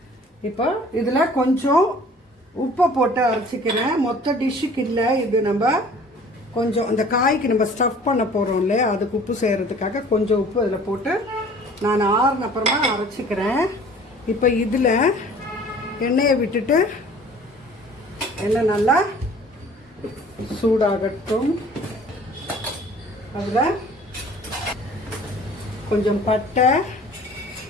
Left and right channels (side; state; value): both; normal; correlation 0.50